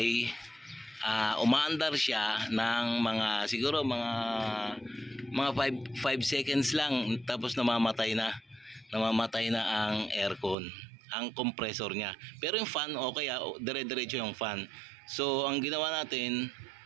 umaandar siya ng siguro mga 5 seconds lang, tapos namamatay na ang aircon, ang compressor niya. Pero yung fan okay, dire-diretso yung fan. So ang ginawa natin,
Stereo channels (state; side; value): drops out; left; at 10.6 s